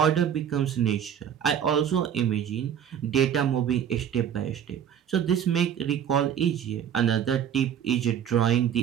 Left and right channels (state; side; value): quieter; left; 9.0 dB